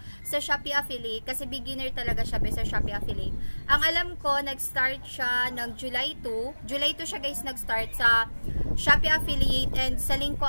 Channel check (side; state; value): both; inverted; correlation -1.00